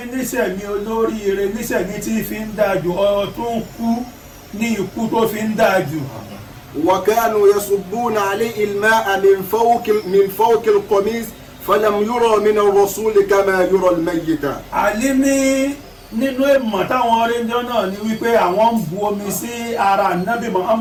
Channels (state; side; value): identical; both; correlation 1.00